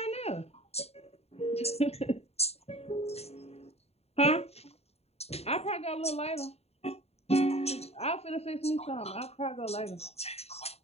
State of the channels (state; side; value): late; right; 0.30 ms